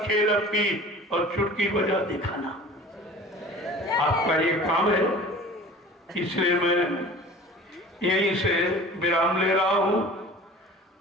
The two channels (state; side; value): normal; both; correlation 0.42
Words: अपनी और चुटकी बजा दिखाना, आपका ये काम है। इसलिए मैं यहीं से विराम ले रहा हूं